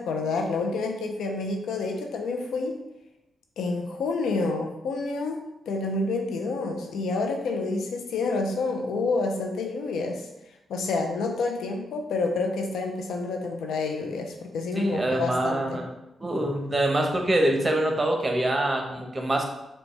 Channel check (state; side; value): normal; both; correlation 0.77